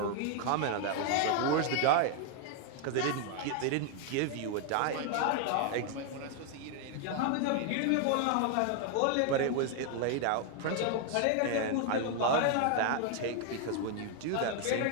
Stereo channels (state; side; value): different; both; correlation 0.00